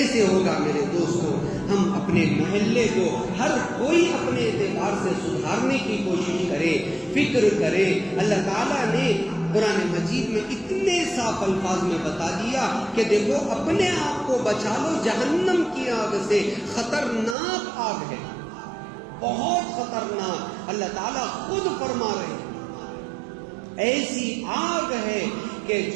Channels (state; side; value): drops out; left; at 17.4 s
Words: ہوگا میرے دوستوں؟ ہم اپنے محلے کو ہر کوئی اپنے اعتبار سے سدھارنے کی کوشش کرے، فکر کرے۔ اللہ تعالیٰ نے قرآن مجید میں اتنے صاف الفاظ میں بتا دیا کہ دیکھو اپنے آپ کو بچا لو جہنم کی آگ سے، خطرناک آگ ہے، بہت خطرناک۔ اللہ تعالیٰ خود فرما رہے ہیں ایسی آگ ہے کہ